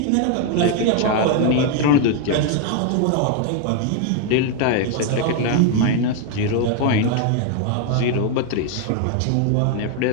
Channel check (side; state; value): both; different; correlation 0.01